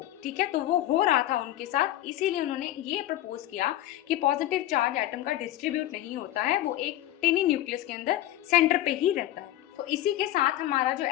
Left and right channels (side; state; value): right; quieter; 14.2 dB